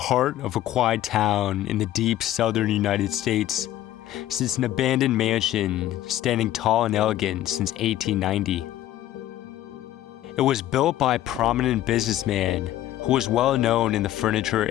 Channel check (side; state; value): right; quieter; 13.5 dB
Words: of a quiet town in the deep southern United States sits an abandoned mansion standing tall and elegant since 1890. It was built by a prominent businessman who was well known in the furniture